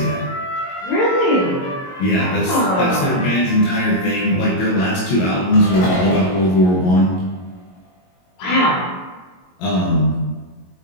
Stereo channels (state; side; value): late; right; 22 ms